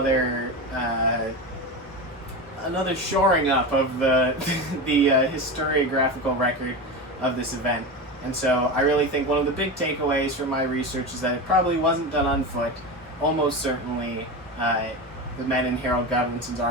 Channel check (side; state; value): both; normal; correlation 0.22